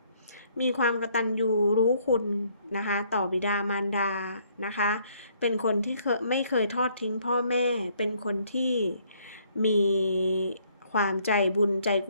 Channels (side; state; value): both; inverted; correlation -0.66